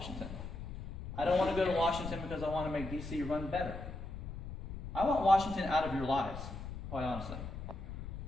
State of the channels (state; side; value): noise; left; rumble, 8 dB below the sound